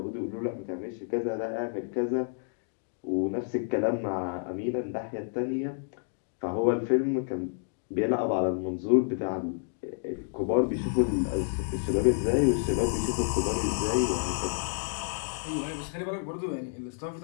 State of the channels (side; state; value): right; silent; digital silence